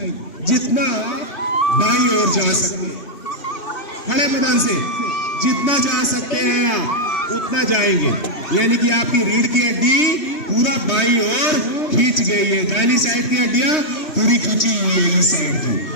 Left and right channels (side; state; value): right; late; 3.2 ms